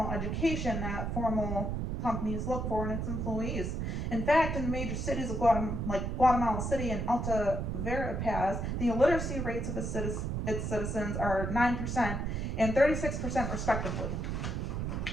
education that formal companies look for in its employees. In fact, in the major cities of Guatemala City and Alta Verapaz, the illiteracy rates of its citizens are 9% and 36% respectively.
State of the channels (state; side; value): noise; right; rumble, 2 dB below the sound